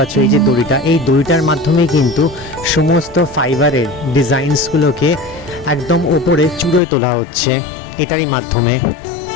এই যে দড়িটা, এই দড়িটার মাধ্যমে কিন্তু সমস্ত ফাইবারের ডিজাইনসগুলোকে একদম ওপরে চূড়োয় তোলা হচ্ছে এটারই মাধ্যমে।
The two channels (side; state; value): right; drops out; at 6.8 s